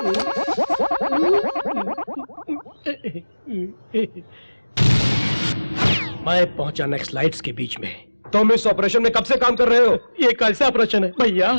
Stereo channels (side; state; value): both; inverted; correlation -1.00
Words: मैं पहुंचा next lights के बीच में। तुम इस ऑपरेशन में कब से काम कर रहे हो? ये कैसा ऑपरेशन है भैया?